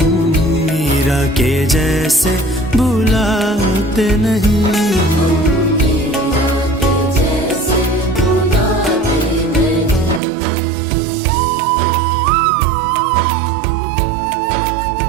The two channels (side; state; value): left; drops out; at 10.2 s